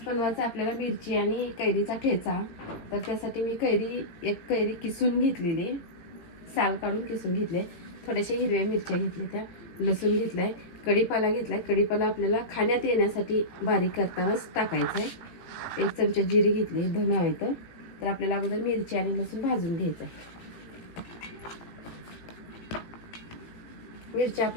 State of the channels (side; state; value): right; late; 18 ms